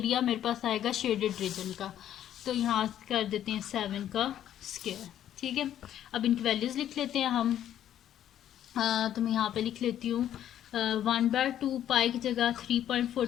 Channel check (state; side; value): quieter; right; 11.0 dB